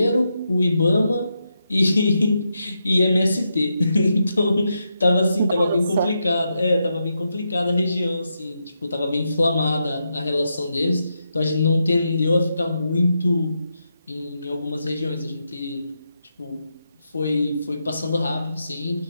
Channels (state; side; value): inverted; both; correlation -0.84